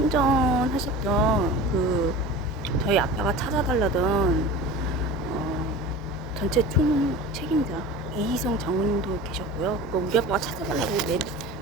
저희 아빠가 찾아달라던 전체 총 책임자 이희성 장군님도 계셨고요. 우리 아빠가 찾아달라고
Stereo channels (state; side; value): normal; both; correlation 0.35